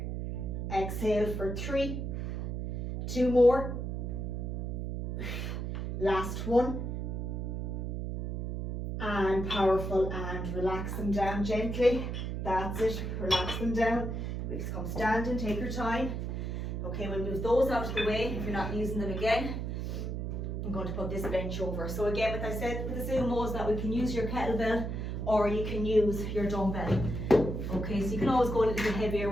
exhale for 3, 2 more, last one, and powerful, and relax them down gently, that's it, relax them down, please come standing, take your time. Okay, we'll move those out of the way if you're not using them again. I'm going to put this bench over. So again, like I said with the Zumos, that we can use your kettlebell or you can use your dumbbell. Okay, so you can always go a little bit heavier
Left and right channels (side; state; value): right; noise; hum, 3 dB below the sound